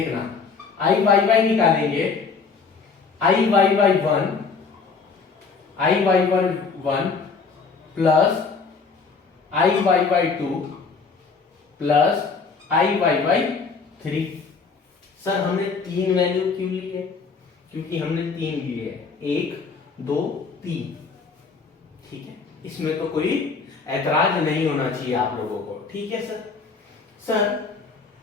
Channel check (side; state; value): right; quieter; 4.9 dB